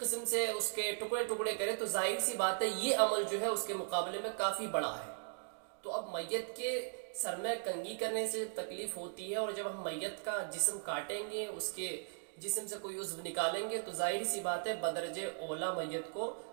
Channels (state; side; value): silent; left; digital silence